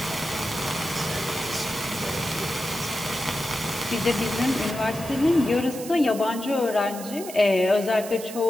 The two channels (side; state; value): right; noise; hiss, 12 dB below the sound